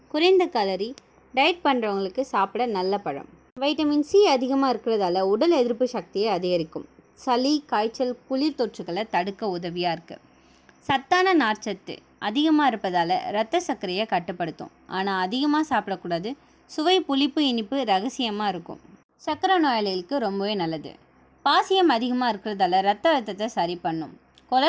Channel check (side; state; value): both; identical; correlation 1.00